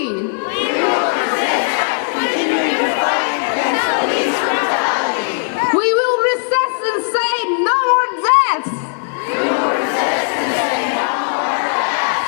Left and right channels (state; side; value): silent; right; 68 dB below the other